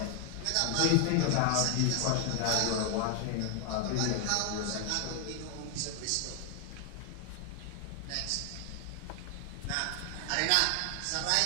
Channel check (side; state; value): both; different; correlation 0.00